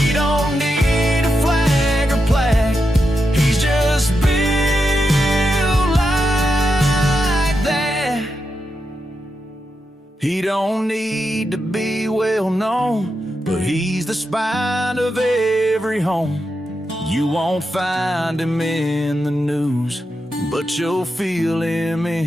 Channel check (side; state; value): both; normal; correlation 0.86